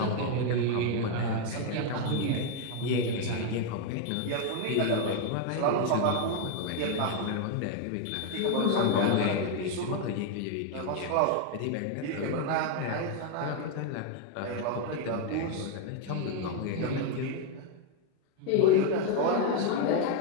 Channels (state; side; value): different; both; correlation 0.01